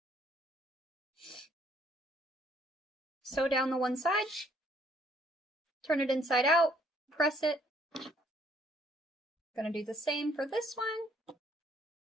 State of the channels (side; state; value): both; normal; correlation 0.65